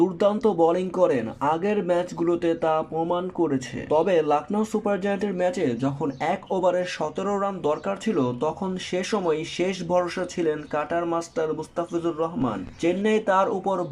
বোলিং করেন, আগের ম্যাচগুলোতে তা প্রমাণ করেছে। তবে লখনৌ সুপার জায়ান্টের ম্যাচে যখন এক ওভারে 17 রান দরকার ছিল, তখন সে সময় শেষ ভরসা ছিলেন কাটার মাস্টার মুস্তাফিজুর রহমান। চেন্নাই তার উপর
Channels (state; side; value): identical; both; correlation 1.00